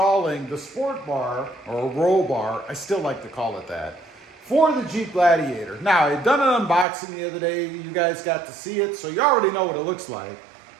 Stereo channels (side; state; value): left; drops out; at 6.9 s